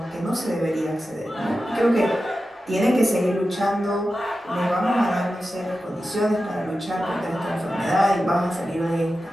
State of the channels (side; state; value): both; normal; correlation 0.92